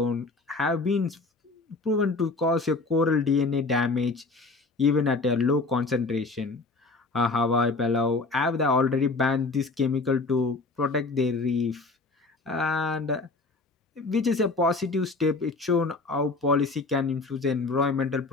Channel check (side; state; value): right; quieter; 3.6 dB